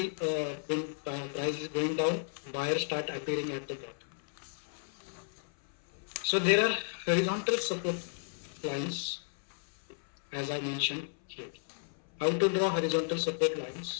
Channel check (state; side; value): silent; right; 56 dB below the other